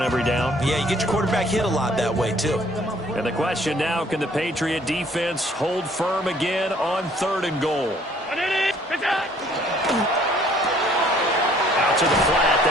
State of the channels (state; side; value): normal; both; correlation 0.59